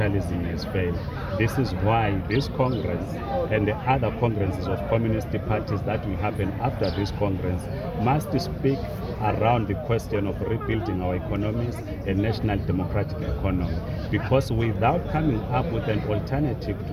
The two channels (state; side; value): identical; both; correlation 1.00